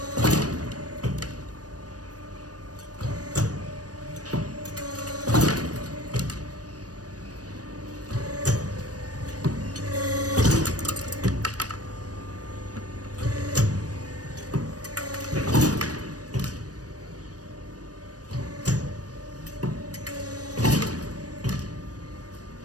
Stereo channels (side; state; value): left; late; 0.68 ms